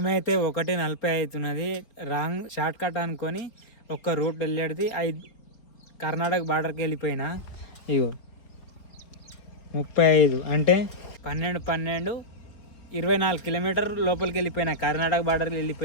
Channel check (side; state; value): right; late; 4.5 ms